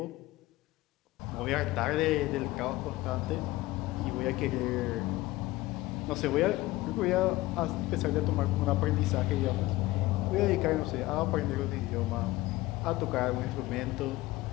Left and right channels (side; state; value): right; quieter; 18.3 dB